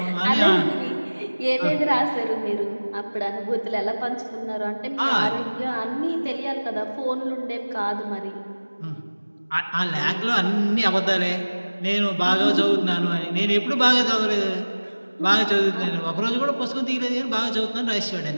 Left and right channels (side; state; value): both; inverted; correlation -1.00